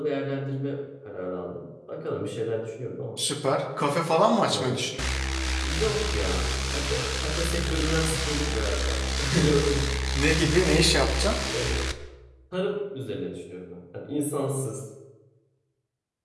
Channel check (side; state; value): both; identical; correlation 1.00